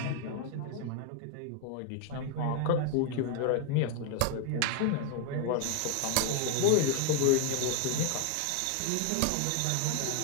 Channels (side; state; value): both; different; correlation 0.01